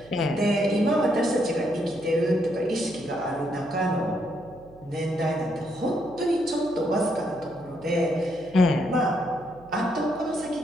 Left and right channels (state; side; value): noise; right; hum, 23 dB below the sound